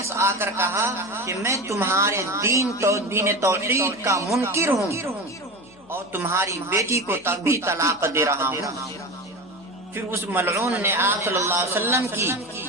آ کر کہا کہ میں تمہارے دین توحید کا منکر ہوں اور تمہاری بیٹی کو تب بھی طلاق دے رہا ہوں. پھر اس ملعون نے آپ صلی اللہ علیہ وسلم کی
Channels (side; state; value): left; noise; hum, 29 dB below the sound